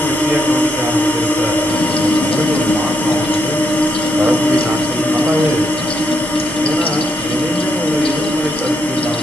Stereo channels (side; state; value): both; normal; correlation 0.78